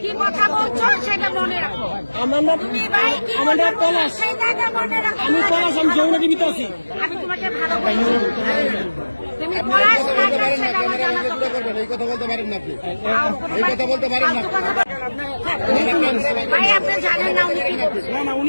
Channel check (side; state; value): both; inverted; correlation -1.00